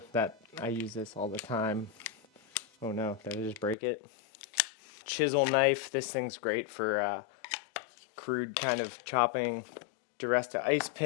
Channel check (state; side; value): drops out; right; at 3.8 s